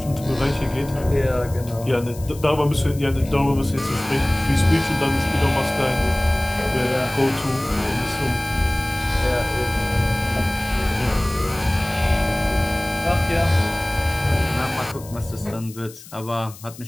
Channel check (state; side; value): noise; left; hiss, 18 dB below the sound